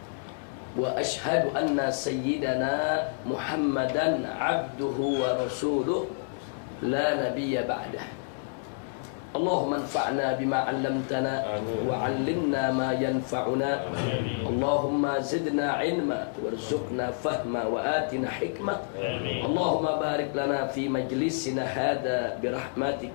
wa ashhadu anna sayyidana Muhammadan abduhu wa rasuluh la nabiyya ba'dah. Allahumma anfa'na bima 'allamtana wa 'allimna ma yanfa'una. Allahumma zidna 'ilma warzuqna fahma wa atina hikmah. Allahumma barik lana fi majlisina hadha bi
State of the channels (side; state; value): right; silent; digital silence